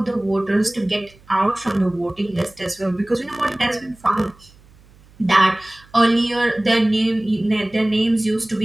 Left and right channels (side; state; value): right; noise; hum, 27 dB below the sound